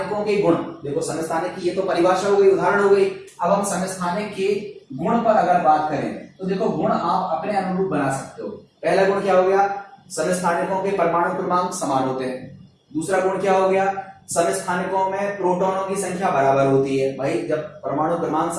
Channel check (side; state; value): both; identical; correlation 1.00